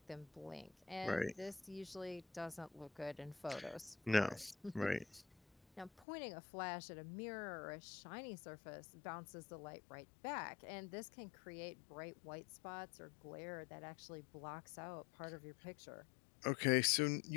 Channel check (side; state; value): right; drops out; at 6.1 s